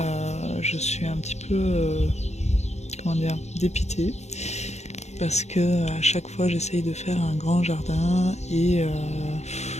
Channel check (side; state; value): right; late; 0.32 ms